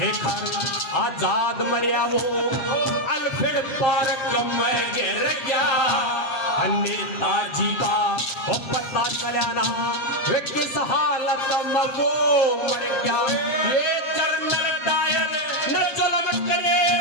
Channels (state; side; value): late; right; 7.6 ms